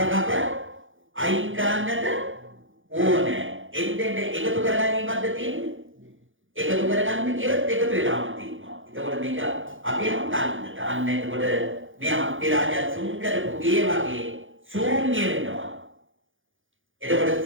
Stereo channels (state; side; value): late; left; 0.58 ms